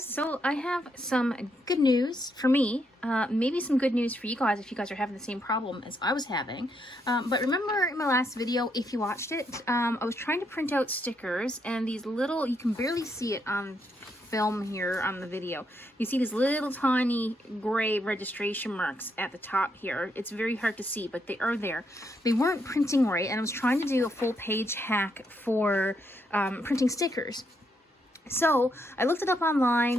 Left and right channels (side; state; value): both; normal; correlation 0.77